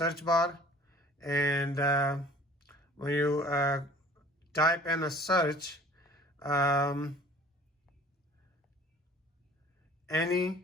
bar, and when you type in a search, any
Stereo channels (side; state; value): both; normal; correlation 0.48